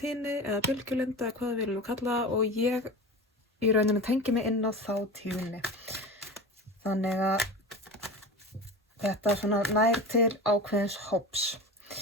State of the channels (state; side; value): normal; both; correlation 0.29